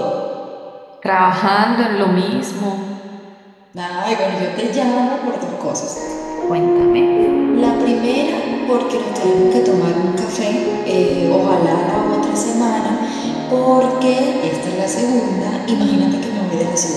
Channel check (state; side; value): identical; both; correlation 1.00